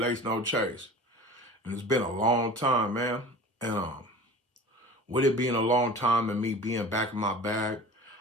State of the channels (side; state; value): both; normal; correlation 0.38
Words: No Chase. And it's been a long time, man. And with it being a long time and me being back in my bag,